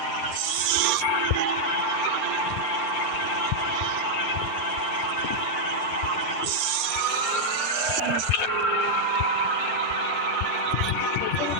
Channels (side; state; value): right; late; 10 ms